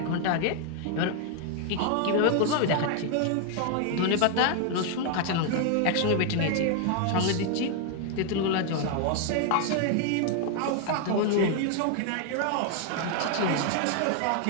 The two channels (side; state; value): both; different; correlation 0.00